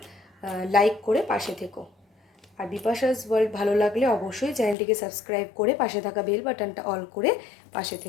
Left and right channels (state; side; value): drops out; right; at 4.8 s